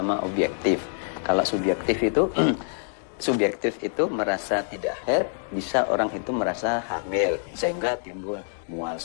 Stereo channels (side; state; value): right; silent; 61 dB below the other